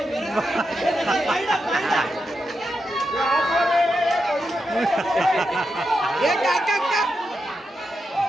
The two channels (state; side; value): normal; both; correlation 0.86